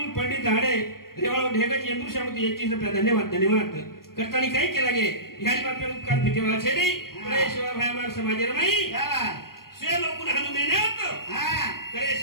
पंडित धाड़े रेवाड़ा ढेगज इंदूर समिति 21 रुपया धन्यवाद। करतानी काय केला गे ह्यानी बापे उपकार फिटेवा छेरी करे शिवा भाई हमार समाज रमाई से लोकून हानु मेहनत करे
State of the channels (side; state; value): right; late; 0.93 ms